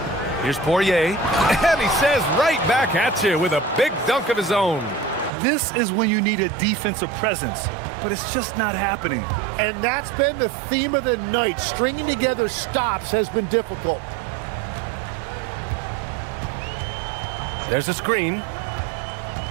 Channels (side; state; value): left; drops out; at 5.3 s